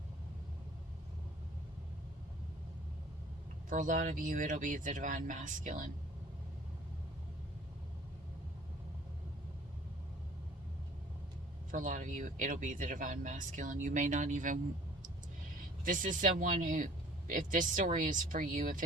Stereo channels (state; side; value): normal; both; correlation 0.51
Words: For a lot of you, it'll be the divine masculine. For a lot of you, it'll be the divine masculine. You may not even... This is someone who, if this story is for you, if